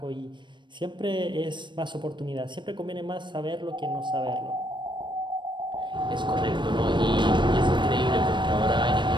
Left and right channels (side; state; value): left; late; 0.22 ms